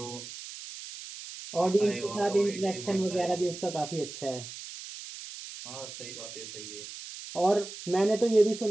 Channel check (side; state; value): right; noise; hiss, 12 dB below the sound